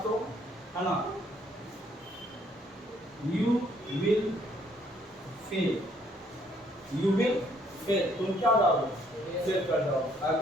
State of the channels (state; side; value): normal; both; correlation 0.66